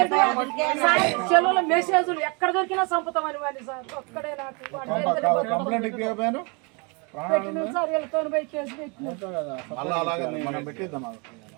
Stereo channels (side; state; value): left; quieter; 31.9 dB